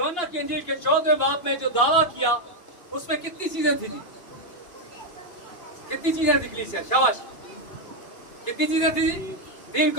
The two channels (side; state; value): right; late; 2.8 ms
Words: की अंजील के 14वें बाब में जो दावा किया, उसमें कितनी चीजें थी जी? कितनी चीजें थी कलीसिया? शाबाश। कितनी चीजें थी जी? 3